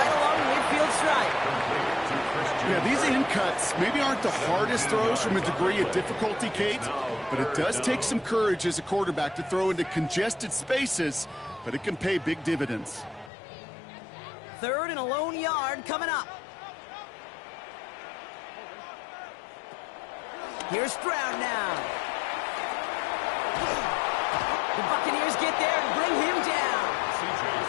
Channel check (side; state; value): right; drops out; at 13.3 s